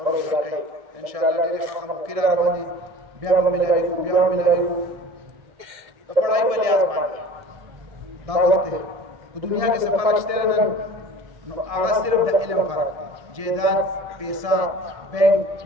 روزګار کوي ان شاء الله ډېر ښه موقع را روان دي بیا به ملاويږو د پړای په لحاظ باندې دا وخت دی په دنیا کې څه فرق شته نن نو هغه صرف د علم فرق دی جیداد پیسہ بینک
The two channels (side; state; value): left; late; 1.7 ms